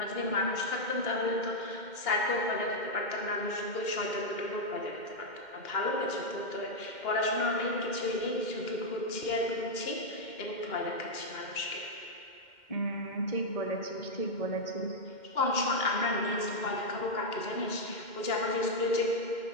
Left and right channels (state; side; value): late; right; 2.1 ms